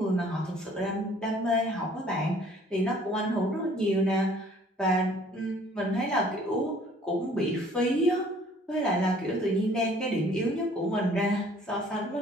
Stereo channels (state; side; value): normal; both; correlation 0.56